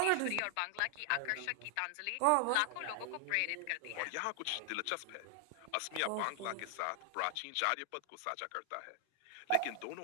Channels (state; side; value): different; both; correlation 0.00